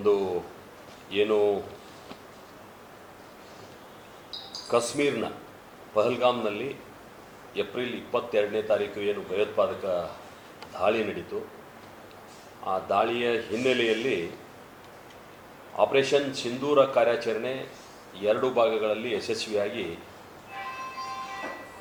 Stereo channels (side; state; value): both; identical; correlation 1.00